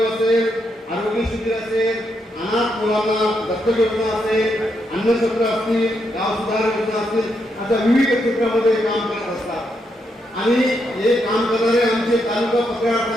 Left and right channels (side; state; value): both; normal; correlation 0.80